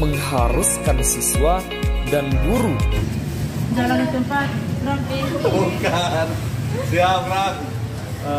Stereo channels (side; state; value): both; identical; correlation 1.00